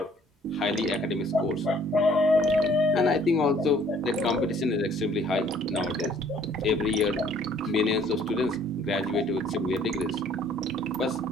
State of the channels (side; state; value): both; normal; correlation 0.59